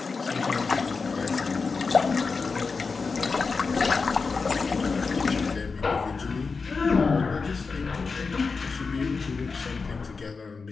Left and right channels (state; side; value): quieter; right; 4.6 dB